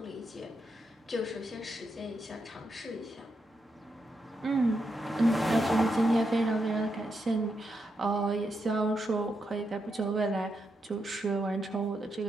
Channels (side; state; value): both; normal; correlation 0.83